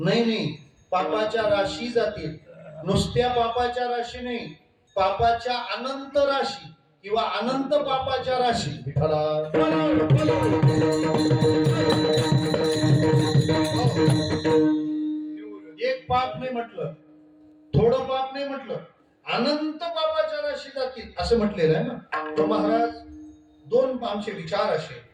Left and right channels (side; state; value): both; identical; correlation 1.00